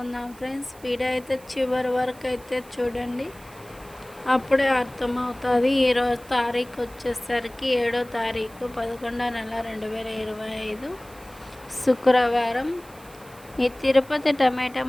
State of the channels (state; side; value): noise; right; hiss, 23 dB below the sound